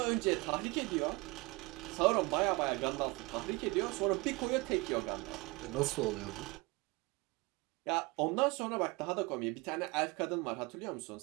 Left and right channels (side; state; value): left; quieter; 24.8 dB